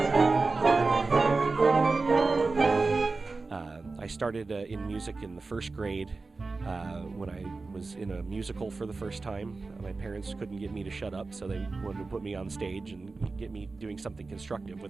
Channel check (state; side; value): quieter; left; 3.8 dB